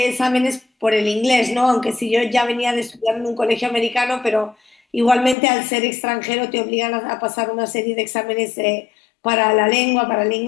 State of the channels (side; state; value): right; drops out; at 5.4 s